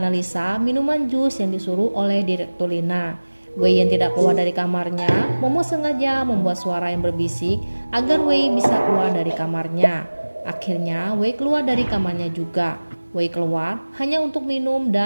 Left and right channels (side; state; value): both; inverted; correlation -1.00